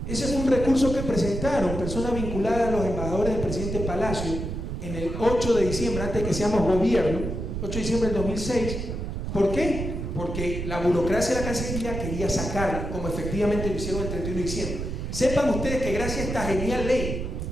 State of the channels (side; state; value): right; noise; rumble, 4 dB below the sound